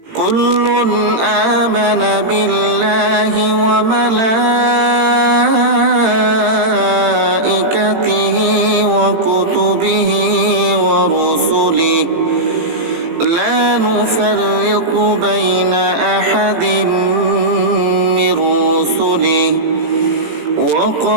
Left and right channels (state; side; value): late; left; 18 ms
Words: كل آمن بالله وملائكته وكتبه ورسله لا نفرق بين أحد من رسله